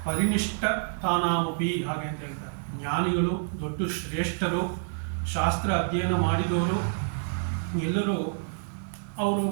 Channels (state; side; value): silent; left; digital silence